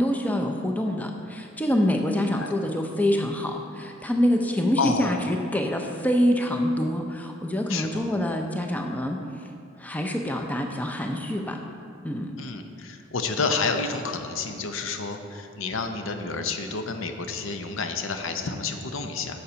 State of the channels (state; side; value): normal; both; correlation 0.67